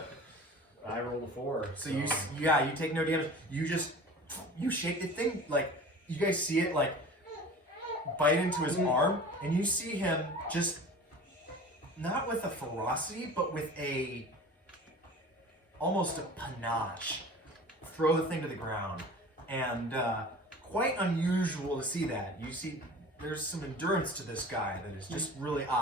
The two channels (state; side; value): normal; both; correlation 0.40